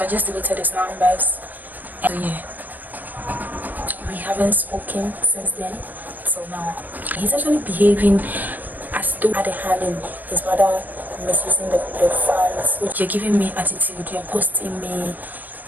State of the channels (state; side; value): late; left; 0.086 ms